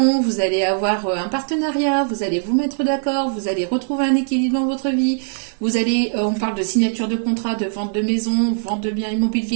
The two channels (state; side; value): silent; left; 56 dB below the other